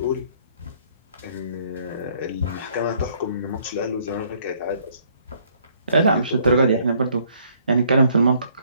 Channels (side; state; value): both; inverted; correlation -0.64